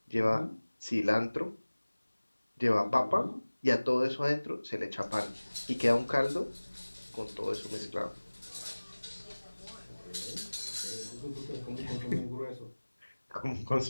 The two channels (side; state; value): both; inverted; correlation -1.00